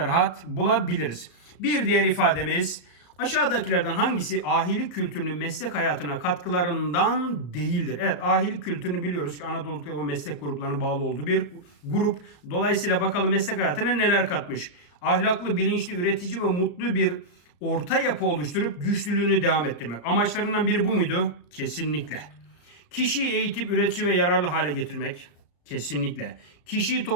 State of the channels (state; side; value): late; right; 34 ms